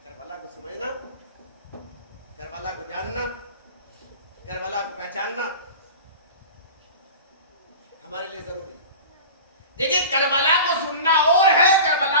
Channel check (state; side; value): inverted; both; correlation -0.35